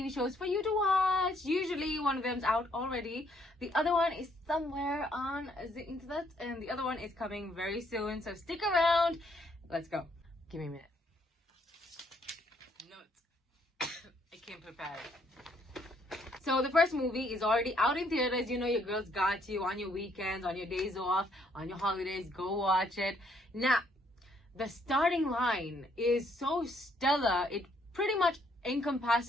shows for you to watch. Usually one of them's out already, the other one is somewhere on the internet, and the other one is coming very soon, so stick around. Let's go. Give me a minute. Notes. I came prepared. So the first movie is already out in theaters. You know your girls got you on your weekends, on your days off, on your holidays. Go watch it. Now, the starting line is so stellar, it pretty much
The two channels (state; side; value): normal; both; correlation 0.69